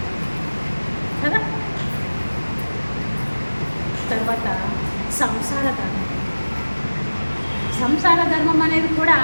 కదా. తర్వాత సంసార ధర్మం. సంసార ధర్మం అనేది కూడా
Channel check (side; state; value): both; inverted; correlation -1.00